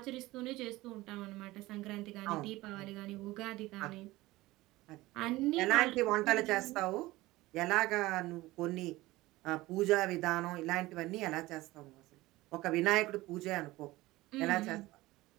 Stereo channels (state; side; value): quieter; left; 18.9 dB